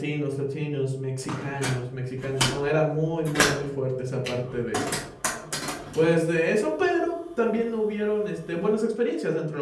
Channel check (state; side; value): identical; both; correlation 1.00